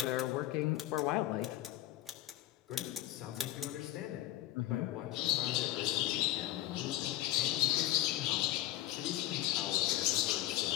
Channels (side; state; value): right; quieter; 14.7 dB